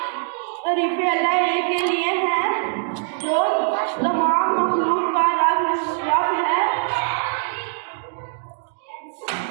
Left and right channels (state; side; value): silent; left; digital silence